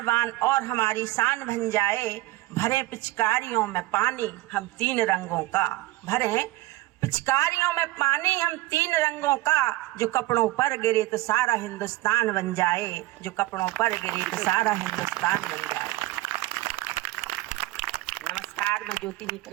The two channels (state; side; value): quieter; left; 18.1 dB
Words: बान और हमारी शान बन जाए। भरे पिचकारियों में पानी हम तीन रंगों का, भरे पिचकारियों में पानी हम तीन रंगों का, जो कपड़ों पर गिरे तो सारा हिंदुस्तान बन जाए, जो कपड़ों पर गिरे तो सारा हिंदुस्तान बन जाए। नमस्कार, मैं ज्योति